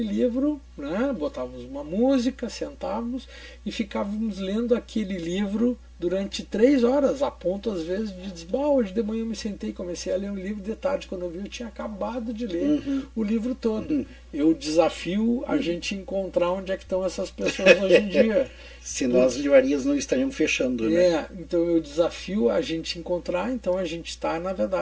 livro, né? Botávamos uma música, sentávamos e ficávamos lendo aquele livro durante 3 horas, a ponto às vezes de dizer, hoje de manhã eu me sentei e comecei a ler um livro, de tarde quando eu vi eu tinha acabado de ler o livro todo. Eu desafio a gente encontrar onde é que estão essas pessoas hoje em dia. Senão as livrarias não estariam fechando, né? Então eu desafio a gente encontrar, então a gente está, na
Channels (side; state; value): both; identical; correlation 1.00